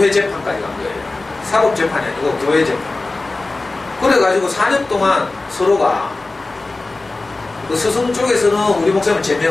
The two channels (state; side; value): quieter; right; 3.3 dB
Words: 재판까지 간 거예요. 사법 재판이 아니고 교회 재판. 그래가지고 4년 동안 서로가 그 스승 쪽에서는 우리 목사님을